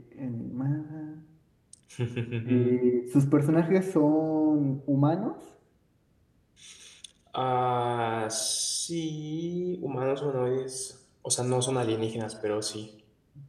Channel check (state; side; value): identical; both; correlation 1.00